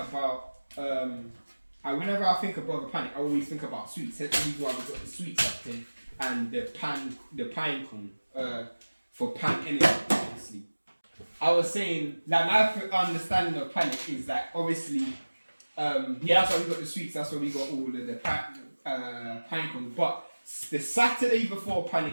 whenever I think of Brother Panic, I always think about sweets. That's the reason why we've got the sweets up there and the pine cone for pan energy, obviously. I was saying like my understanding of Panic is that obviously that's why we got the sweets, that's why we got all of the pine cones. But the Saturday before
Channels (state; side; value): inverted; both; correlation -1.00